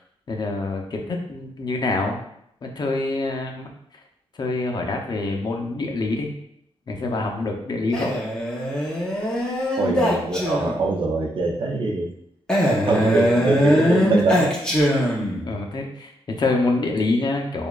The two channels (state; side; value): normal; both; correlation 0.77